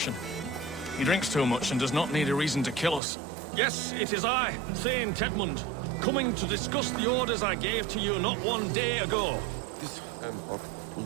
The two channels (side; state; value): left; drops out; at 3.0 s